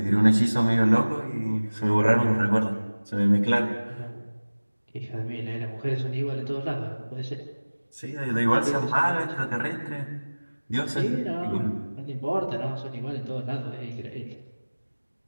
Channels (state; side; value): inverted; both; correlation -1.00